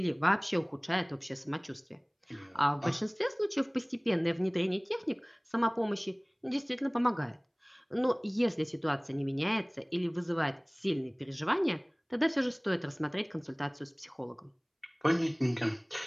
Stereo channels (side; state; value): both; identical; correlation 1.00